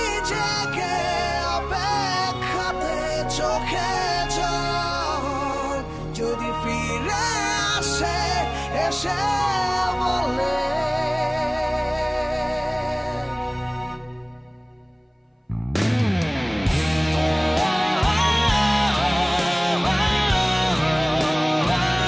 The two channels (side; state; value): both; identical; correlation 1.00